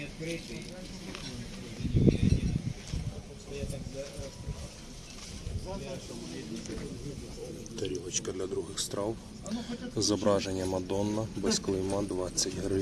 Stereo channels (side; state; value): both; identical; correlation 1.00